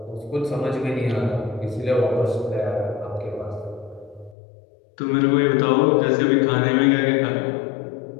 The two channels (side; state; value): right; drops out; at 4.4 s